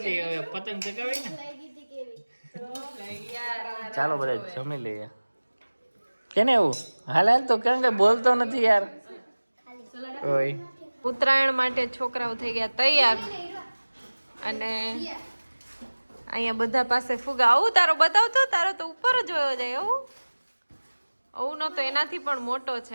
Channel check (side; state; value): both; inverted; correlation -1.00